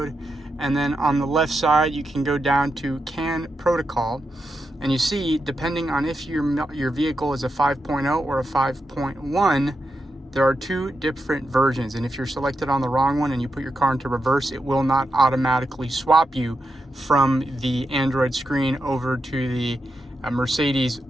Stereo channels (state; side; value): normal; both; correlation 0.86